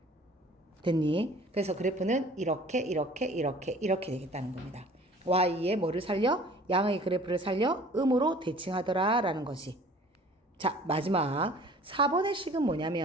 됐니? 그래서 그래프는 이렇게 되겠다는 겁니다. y의 뭐를 살려? 양의 그래프를 살려 음으로 대칭하더라 라는 거지. 자, 마지막 4번의 식은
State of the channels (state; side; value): normal; both; correlation 0.49